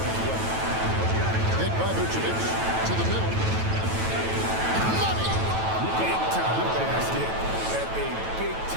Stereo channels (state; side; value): late; left; 9.1 ms